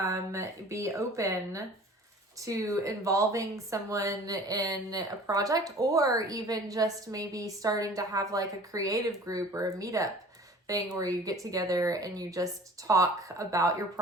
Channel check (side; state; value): both; normal; correlation 0.46